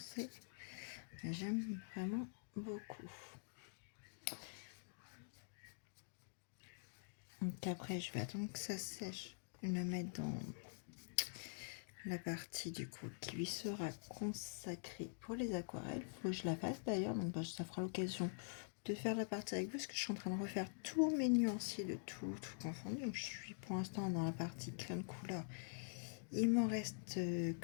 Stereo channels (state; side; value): silent; right; digital silence